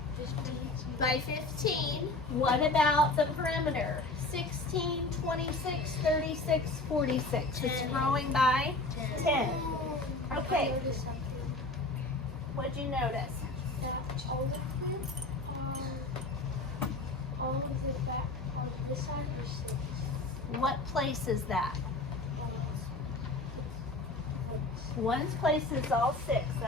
By 15, what about the perimeter? 16, 26, 36, 46. It's growing by 10. Okay, what'd you notice? All of the back on this side are 6. What place is that? One's place is all 6,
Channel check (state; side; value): quieter; right; 3.0 dB